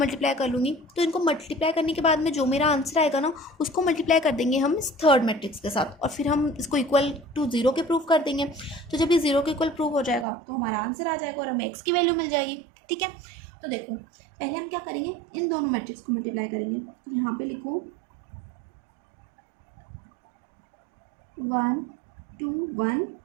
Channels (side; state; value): left; drops out; at 10.2 s